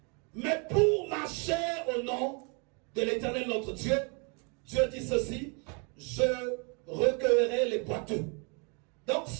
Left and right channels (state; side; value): quieter; left; 34.6 dB